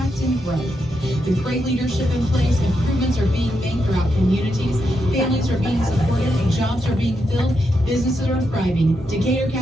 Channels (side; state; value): both; normal; correlation 0.83